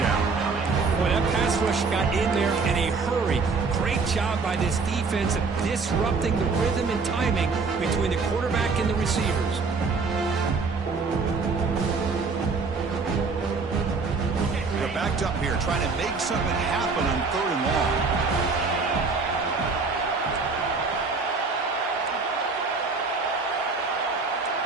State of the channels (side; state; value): left; quieter; 4.4 dB